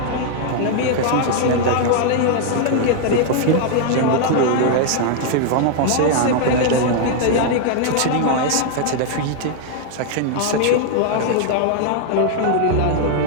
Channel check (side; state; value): both; different; correlation 0.00